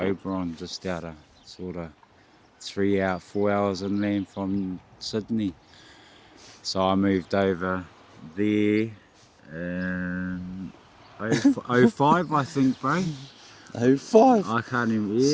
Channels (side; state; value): both; identical; correlation 1.00